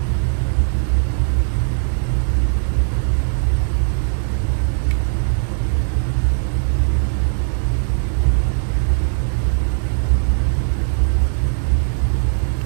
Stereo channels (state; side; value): silent; left; 65 dB below the other